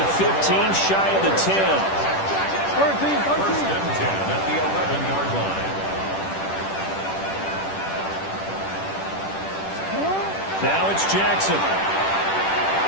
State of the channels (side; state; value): right; late; 10 ms